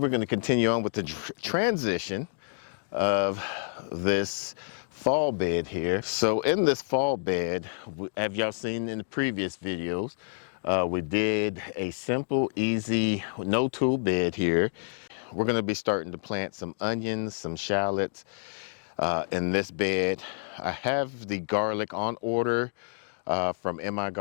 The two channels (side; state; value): right; silent; digital silence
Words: going to continue on with the transition of this fall bed here. So in this fall bed, have y'all seen in the previous videos, we did a simple, easy, no tool bed here. We're going to be starting to plant some onions, some shallots in this bed. I have the garlic on order from MI